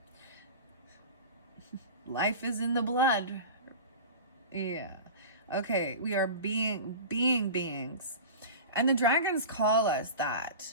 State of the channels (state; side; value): inverted; both; correlation -0.33